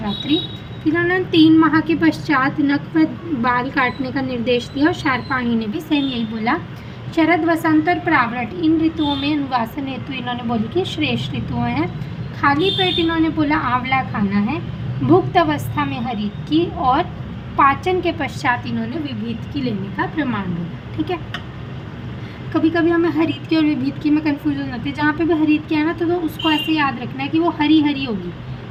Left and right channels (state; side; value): identical; both; correlation 1.00